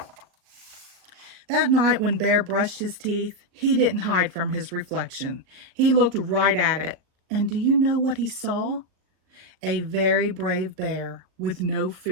That night when Bear brushed his teeth, he didn't hide from his reflection. He looked right at it. And do you know what he saw? A very brave bear with no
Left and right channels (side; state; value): left; late; 38 ms